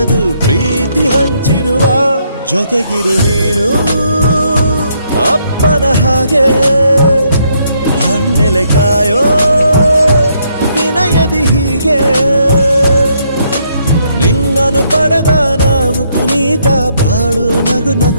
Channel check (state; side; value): inverted; both; correlation -0.73